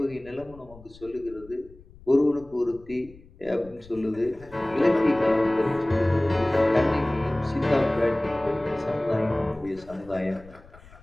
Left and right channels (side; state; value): left; noise; rumble, 22 dB below the sound